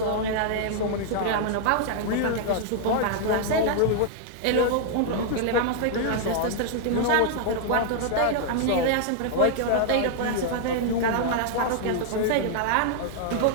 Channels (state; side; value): different; both; correlation 0.00